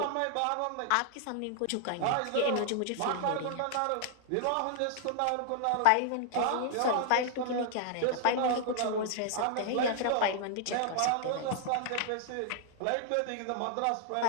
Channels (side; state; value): both; different; correlation 0.00